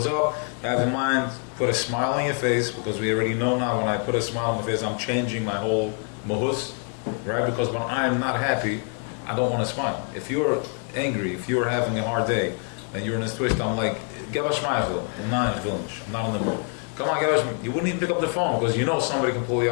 up, have in mind, put a smile on your face, because we already know now when I put a smile on my face, I'm changing my whole mahus, right? Because when I'm not happy, I don't want to smile. If you're angry, if you're having a hard day, and you're in a twist, I'm like, Geb a schmeichel. I'm not in the mood. Come on, you wouldn't even pick up the phone, because you know somebody can pull you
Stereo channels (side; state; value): right; quieter; 37.3 dB